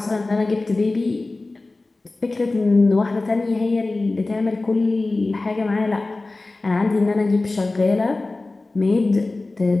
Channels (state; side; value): quieter; right; 3.2 dB